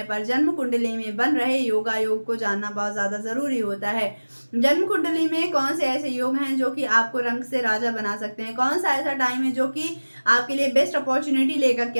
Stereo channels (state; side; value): inverted; both; correlation -1.00